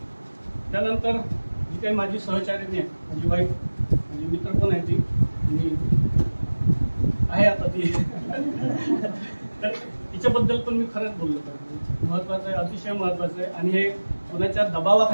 त्यानंतर जी काही माझी सहचारिणी आहे माझी वाईफ माझी मित्र पण आहे ती आणि आहे आता ती तर तिच्याबद्दल पण मी खरंच बोललो पाहिजे. महत्वाचं आहे अतिशय महत्वाचं आहे आणि हे कोणाच्या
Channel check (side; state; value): both; inverted; correlation -1.00